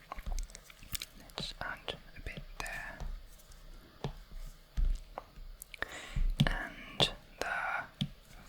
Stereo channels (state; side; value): identical; both; correlation 1.00